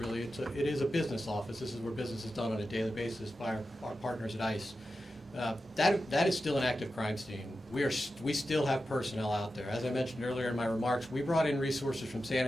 it is a business office. This is where business is done on a daily basis by our partners at ICE. That is still an active crime scene. We still have personnel out there. As I mentioned earlier in my remarks, we brought in resources from San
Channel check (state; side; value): normal; both; correlation 0.91